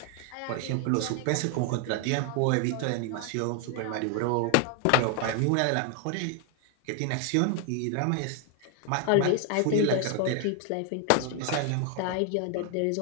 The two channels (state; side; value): different; both; correlation 0.00